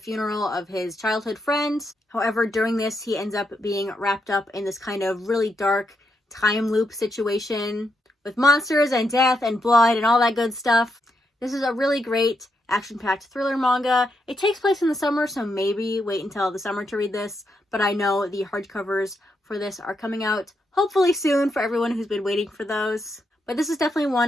of his childhood friends. However, during this, he ends up being wrapped up in this kind of really dark time loop situation with monsters and death and blood and all that good stuff. This is a really great action-packed thriller manga. It takes place in the summer, so maybe wait until the summer to read this, but I know the hardcovers for this are coming out hopefully soon for everyone who's been waiting for those. But this is definitely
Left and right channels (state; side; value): normal; both; correlation 0.81